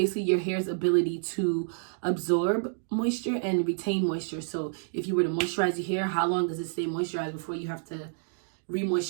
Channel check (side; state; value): left; silent; digital silence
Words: your hair's ability to absorb moisture and retain moisture. So if you were to moisturize your hair, how long does it stay moisturized before you have to